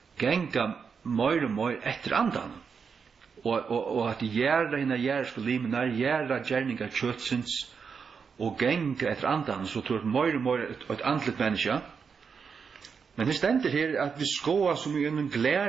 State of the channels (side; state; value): left; quieter; 6.0 dB